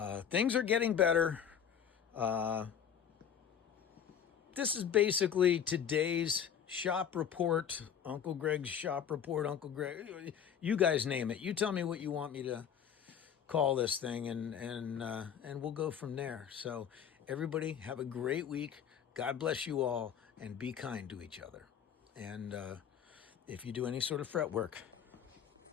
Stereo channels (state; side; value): quieter; right; 8.4 dB